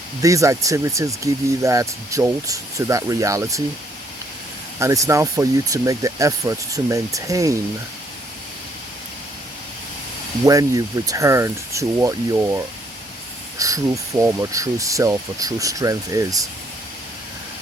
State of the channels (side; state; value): both; normal; correlation 0.68